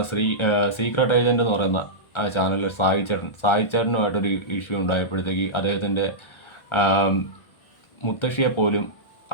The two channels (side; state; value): right; late; 1.4 ms